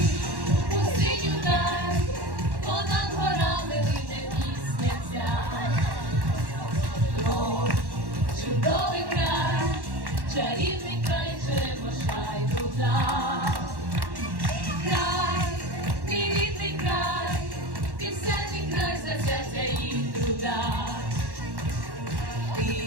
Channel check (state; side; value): late; left; 1.1 ms